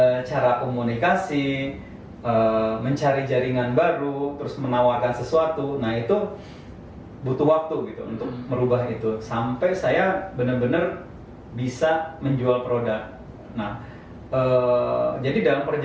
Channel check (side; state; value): both; identical; correlation 1.00